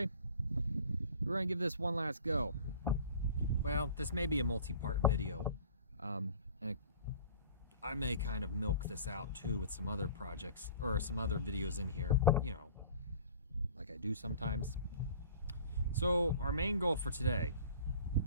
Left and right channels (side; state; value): both; inverted; correlation -0.45